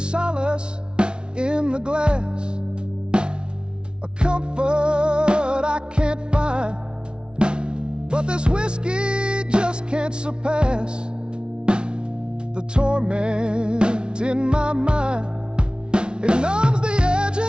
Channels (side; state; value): left; late; 0.055 ms